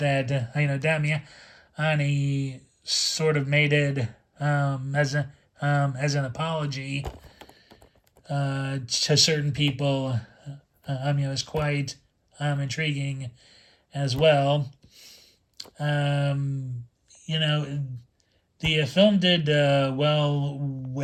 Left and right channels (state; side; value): identical; both; correlation 1.00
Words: Damiani sort of made it as an apology to certain people, is quite intriguing as well. The film did well